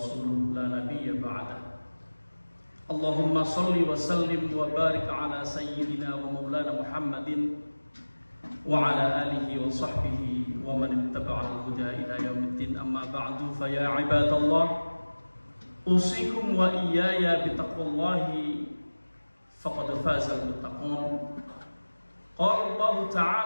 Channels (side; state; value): both; inverted; correlation -1.00